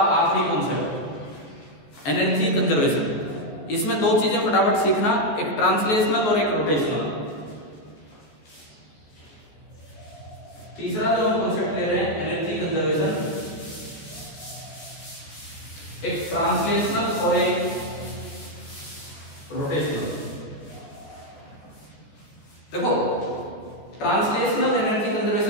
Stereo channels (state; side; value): late; right; 14 ms